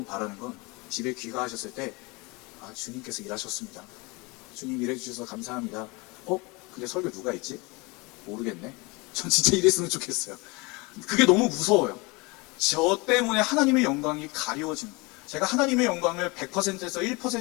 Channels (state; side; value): quieter; right; 26.4 dB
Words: 바라는 건 집에 귀가하셨을 때, 아, 주님께서 일하셨습니다. 주님 일해주셔서 감사합니다. 근데 설교 누가 했지? 모르겠네. 전 진짜 이랬으면 좋겠어요. 그게 너무 무서워요. 저 때문에 하나님의 영광이 가리워지는 거예요. 제가 하나님의 영광을 100%에서